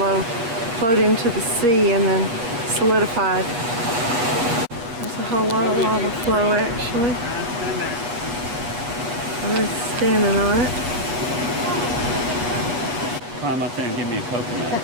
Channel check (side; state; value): left; late; 8.4 ms